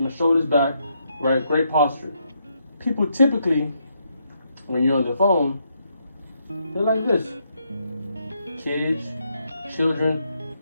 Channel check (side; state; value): both; inverted; correlation -0.77